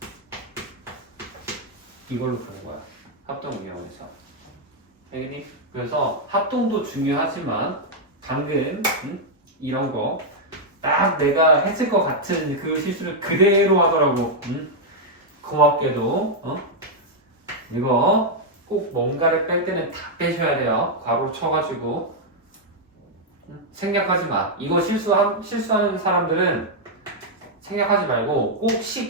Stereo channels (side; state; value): both; normal; correlation -0.02